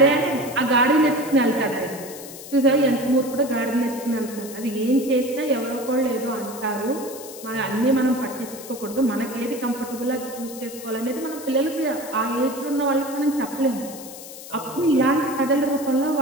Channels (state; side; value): noise; left; hiss, 14 dB below the sound